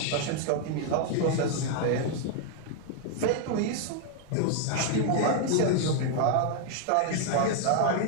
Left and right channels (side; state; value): both; different; correlation 0.00